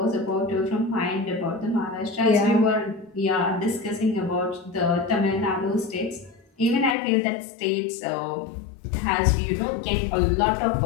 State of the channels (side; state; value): right; drops out; at 7.0 s